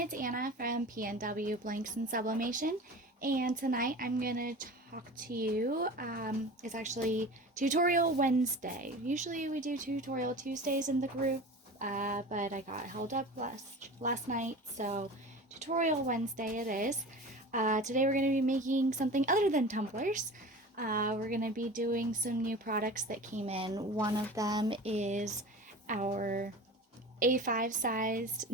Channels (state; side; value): normal; both; correlation 0.35